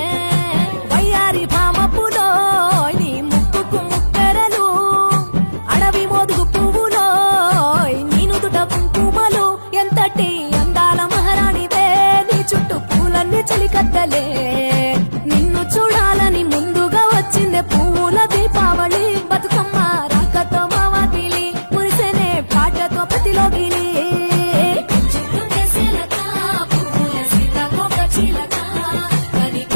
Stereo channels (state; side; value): inverted; both; correlation -1.00